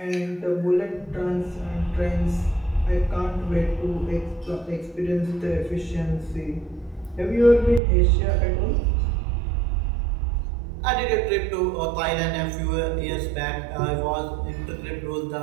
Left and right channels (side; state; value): left; drops out; at 7.8 s